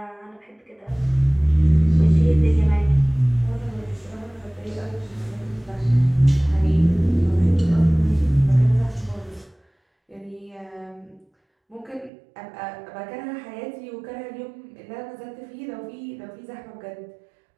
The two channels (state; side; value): drops out; left; at 12.1 s